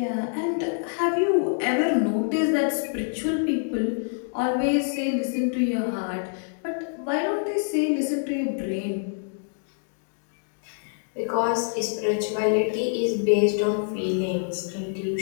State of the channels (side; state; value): right; silent; 61 dB below the other